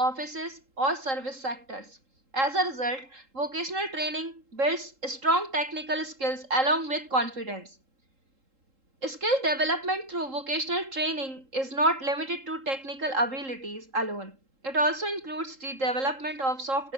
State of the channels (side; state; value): left; late; 3.7 ms